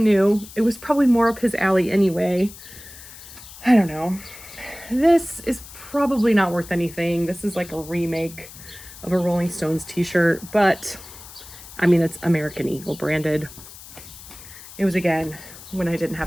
It was probably more up his alley anyway. I don't know. This is probably not worth anything. This is like a remake of a Rolling Stones t-shirt, but I mean, it's American Eagle branded. It was, again, when I didn't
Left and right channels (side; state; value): left; noise; hiss, 17 dB below the sound